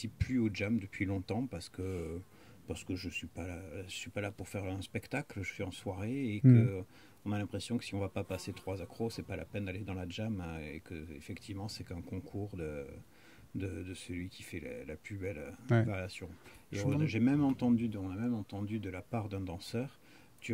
plus au jam depuis longtemps parce que je suis pas là pour faire un spectacle, je suis en soirée et que on a l'impression que si on va pas passer 3 accros, c'est pas la peine d'aller dans la jam et que effectivement c'est qu'un concours de celui qui fait la plus belle variation. Et on a même entendu de la part d'un danseur,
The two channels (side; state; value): both; identical; correlation 1.00